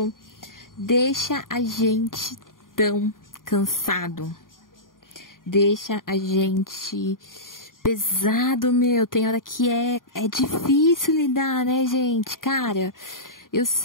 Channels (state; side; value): late; right; 0.90 ms